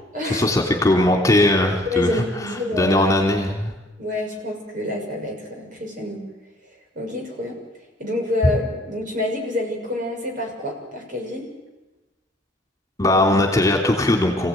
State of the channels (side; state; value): both; normal; correlation 0.57